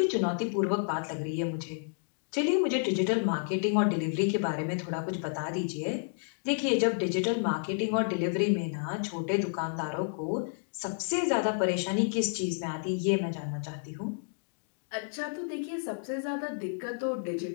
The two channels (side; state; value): right; silent; digital silence